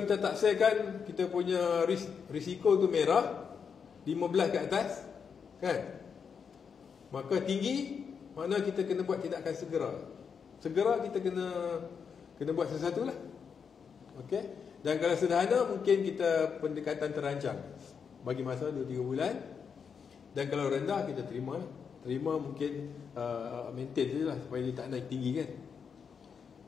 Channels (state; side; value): quieter; right; 6.5 dB